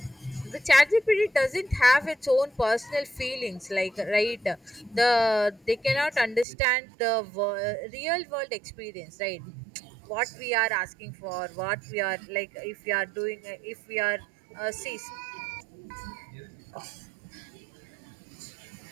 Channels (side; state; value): left; drops out; at 6.5 s